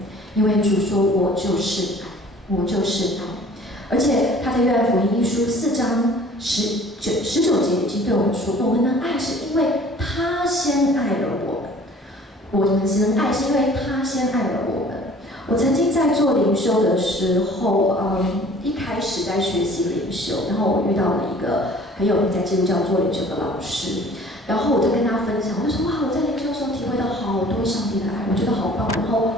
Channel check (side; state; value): both; normal; correlation 0.50